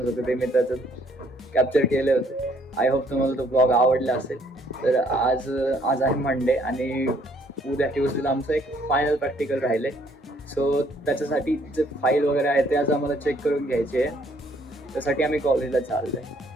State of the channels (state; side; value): normal; both; correlation 0.64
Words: होते ते मी त्याचं कॅप्चर केले होते. आय होप तुम्हाला तो ब्लॉग आवडला असेल. तर आज आहे मंडे आणि उद्या ट्यूजडेला आमचं एक फायनल प्रॅक्टिकल राहिले. सो त्याच्यासाठी जे फाईल वगैरे आहे ते आज आम्हाला चेक करून घ्यायचे आहे. त्यासाठी आम्ही कॉलेजला चाललो आहे.